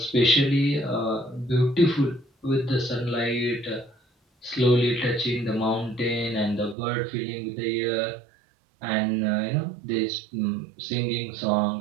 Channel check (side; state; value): left; drops out; at 6.8 s